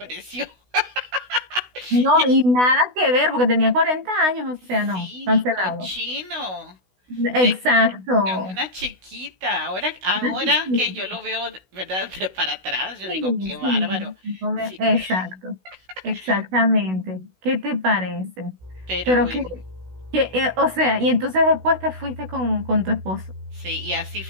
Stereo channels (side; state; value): left; late; 16 ms